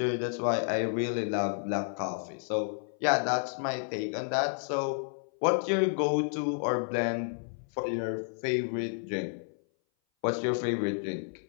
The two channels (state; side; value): silent; right; 57 dB below the other